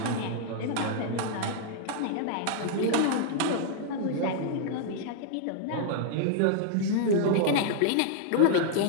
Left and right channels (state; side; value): different; both; correlation -0.01